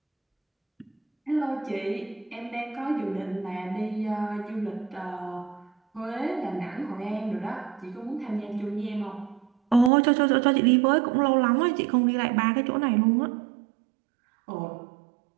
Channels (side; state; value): left; drops out; at 9.9 s